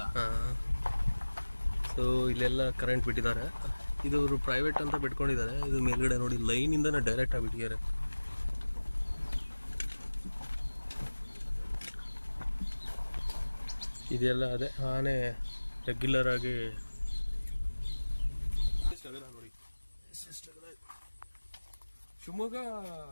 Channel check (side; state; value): both; inverted; correlation -1.00